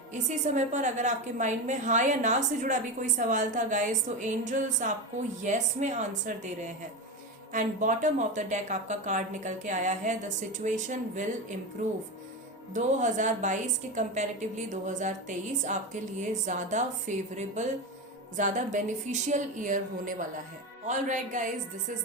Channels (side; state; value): both; normal; correlation 0.19